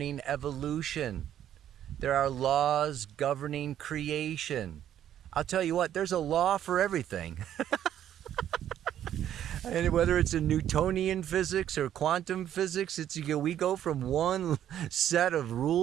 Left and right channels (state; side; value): quieter; left; 10.8 dB